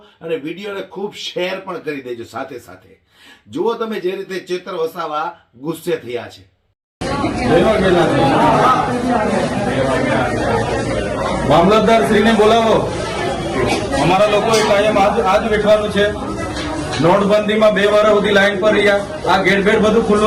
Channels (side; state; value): both; identical; correlation 1.00